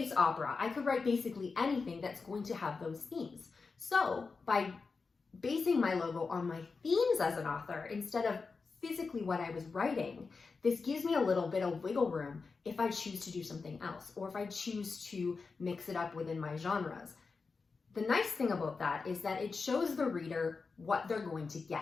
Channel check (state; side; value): quieter; right; 4.5 dB